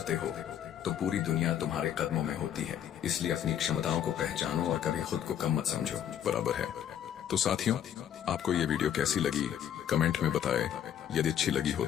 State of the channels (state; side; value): quieter; right; 9.8 dB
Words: हो तो पूरी दुनिया तुम्हारे कदमों में होती है। इसलिए अपनी क्षमताओं को पहचानो और कभी खुद को कम मत समझो। बराबर है। तो साथियों, आपको ये वीडियो कैसी लगी कमेंट में बताएं। यदि अच्छी लगी हो